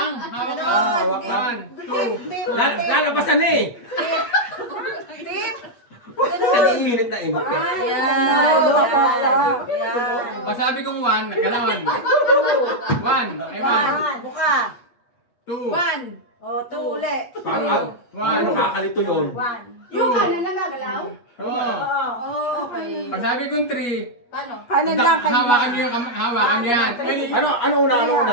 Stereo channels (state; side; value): late; right; 8.4 ms